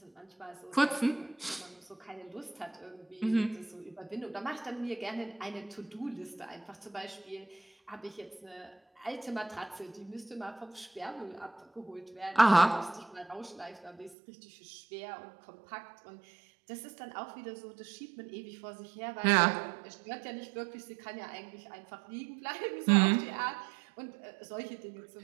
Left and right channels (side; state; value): left; drops out; at 14.2 s